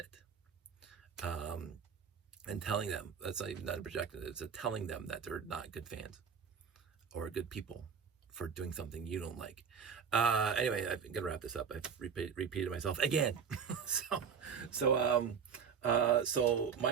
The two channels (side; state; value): left; quieter; 6.7 dB